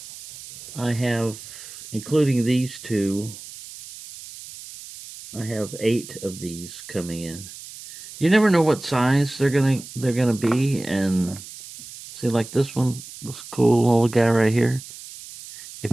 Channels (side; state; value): right; noise; hiss, 15 dB below the sound